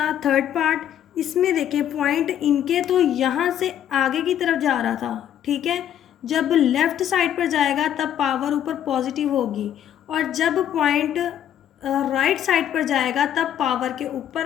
थर्ड पार्ट। इसमें देखें पॉइंट इनके तो यहाँ से आगे की तरफ जा रहा था। ठीक है, जब लेफ़्ट साइड पर जाएगा तब पावर ऊपर पॉजिटिव होगी, और जब पॉइंट राइट साइड पर जाएगा तब पावर के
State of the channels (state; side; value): quieter; right; 10.4 dB